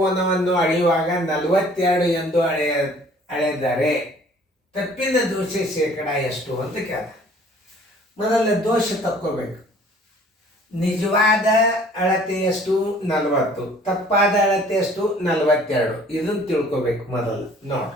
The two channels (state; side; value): normal; both; correlation 0.54